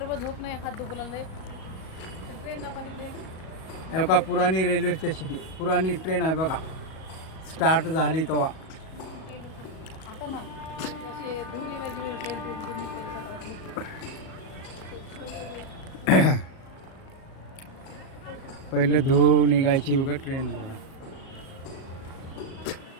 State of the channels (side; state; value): right; late; 37 ms